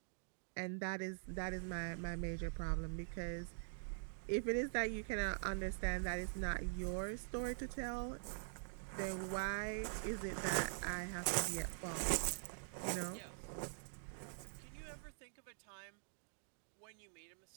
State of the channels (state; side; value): silent; left; digital silence